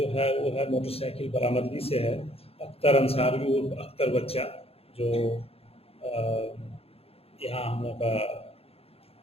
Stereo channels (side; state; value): right; late; 0.28 ms